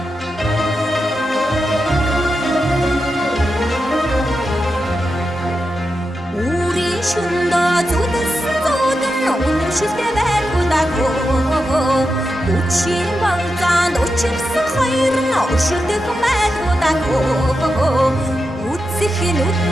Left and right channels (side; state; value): both; normal; correlation 0.88